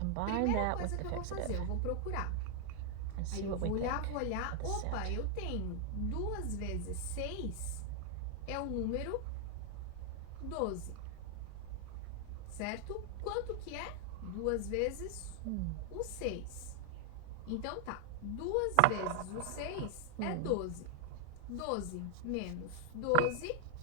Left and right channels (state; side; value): different; both; correlation 0.00